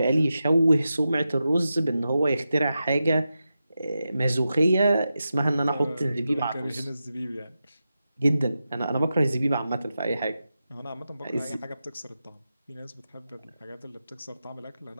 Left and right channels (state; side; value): inverted; both; correlation -0.90